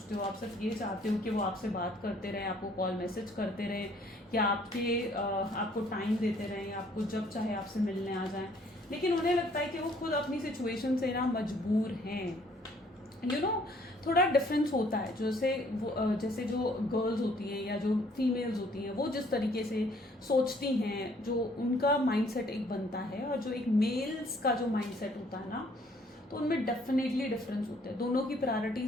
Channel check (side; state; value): both; normal; correlation 0.61